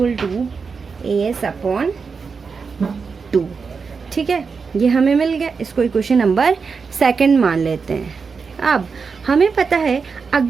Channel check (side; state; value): left; quieter; 5.2 dB